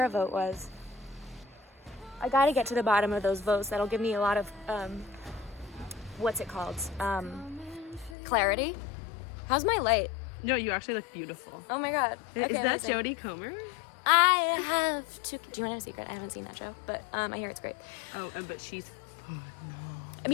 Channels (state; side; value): drops out; right; at 8.2 s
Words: vote was. I gotta get to the bottom of those votes. That'll give me a lot of, what's it called? Clarity. How's my light? No, you actually look beautiful. Oh my god. Is Okay, that listen. Jodie Comer? I have to. Do you want to know a secret? I haven't seen that show, but I hear it's great. Oh, but she's. I